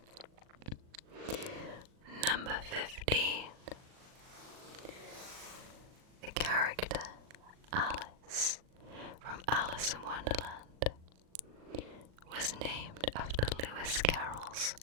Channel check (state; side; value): late; left; 39 ms